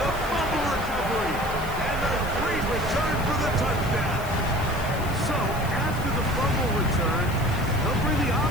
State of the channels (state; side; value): noise; left; hiss, 16 dB below the sound